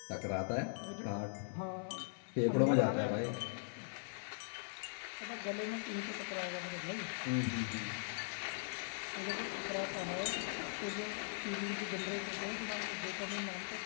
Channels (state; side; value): silent; right; 51 dB below the other